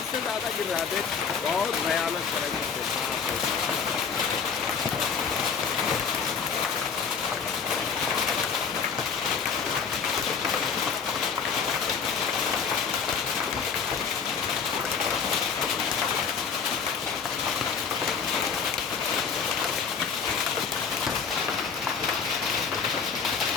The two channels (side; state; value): right; quieter; 6.2 dB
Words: ज़्यादा गिर रहा है। देख बहुत भयानक तरीके से।